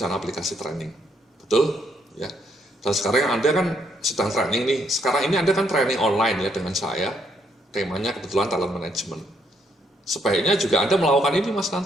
aplikasi training. Betul? Ya. Dan sekarang Anda kan sedang training nih, sekarang ini Anda kan training online ya dengan saya, temanya kebetulan talent management. Sebaiknya juga Anda melakukan ini Mas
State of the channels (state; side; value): normal; both; correlation 0.72